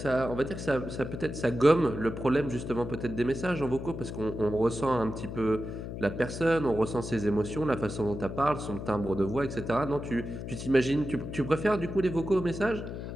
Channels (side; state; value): left; noise; hum, 7 dB below the sound